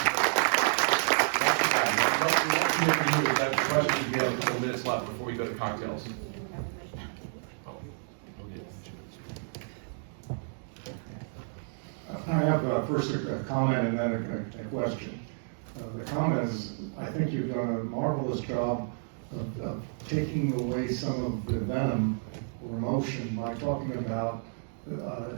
we have a couple minutes left before we go to cocktails. I have first a comment and then a question. The comment is, I think you've done a marvelous job of taking away some of the venom or emotion by talking about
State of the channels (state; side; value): silent; left; digital silence